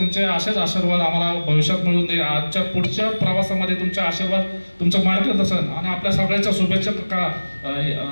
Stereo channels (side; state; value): both; inverted; correlation -1.00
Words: असेच आशीर्वाद आम्हाला भविष्यात मिळून दे. आजच्या पुढच्या प्रवासामध्ये तुमचे आशीर्वाद, तुमचं मार्गदर्शन आणि आपल्या सगळ्यांच्या शुभेच्छा